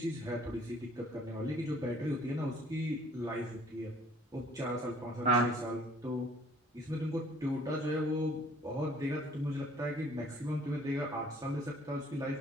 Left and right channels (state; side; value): normal; both; correlation 0.57